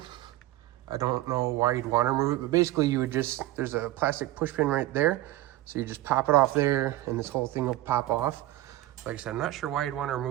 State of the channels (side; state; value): left; quieter; 16.1 dB